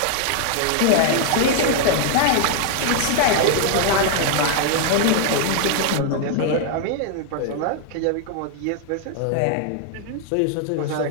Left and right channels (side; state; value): both; different; correlation 0.00